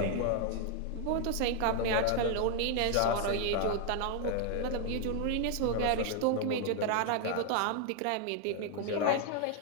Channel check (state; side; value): different; both; correlation 0.00